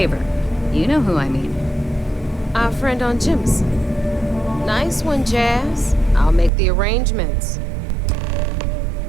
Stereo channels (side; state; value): left; drops out; at 6.5 s